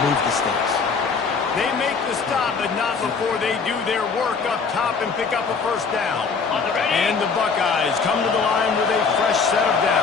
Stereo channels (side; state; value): right; quieter; 5.2 dB